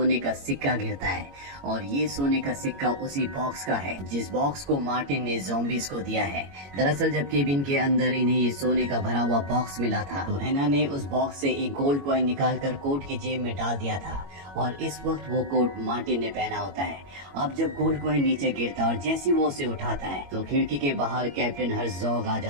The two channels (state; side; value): late; left; 21 ms